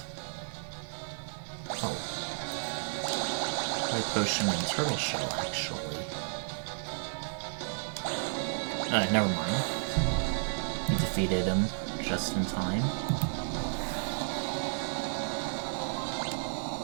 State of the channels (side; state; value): left; silent; digital silence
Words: Oh. Light potion and turtle shell, actually. Never mind. We defeated him just in time.